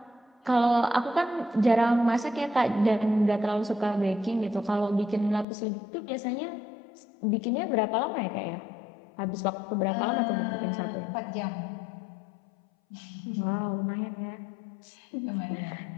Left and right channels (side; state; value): right; drops out; at 5.5 s